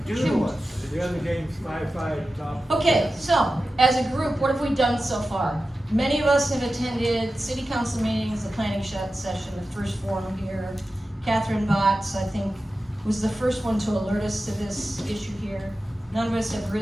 do to us. The other game's 5-5 top. Okay, so as a group, what have we done so far? Many of us have attended city council meetings, the planning session, the first forum here. Catherine Botts, I think, was the first one to alert us to this issue here. None of us have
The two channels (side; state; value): both; normal; correlation 0.94